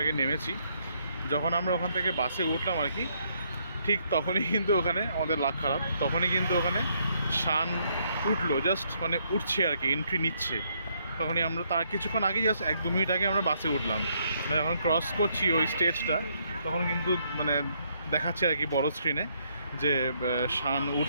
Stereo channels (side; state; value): both; inverted; correlation -0.72